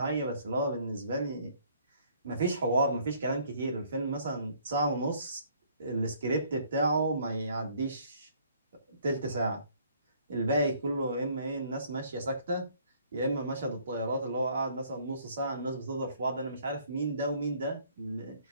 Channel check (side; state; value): both; inverted; correlation -0.61